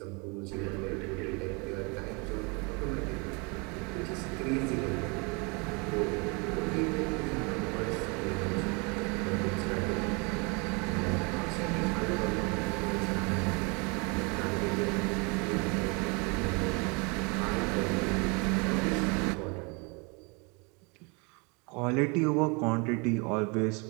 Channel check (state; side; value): quieter; left; 30.6 dB